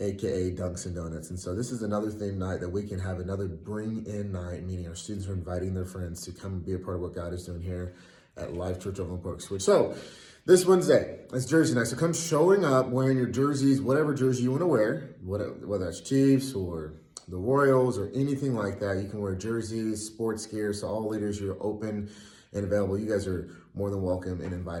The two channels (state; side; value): identical; both; correlation 1.00